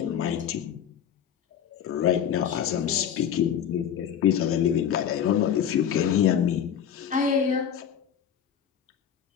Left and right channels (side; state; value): right; quieter; 8.8 dB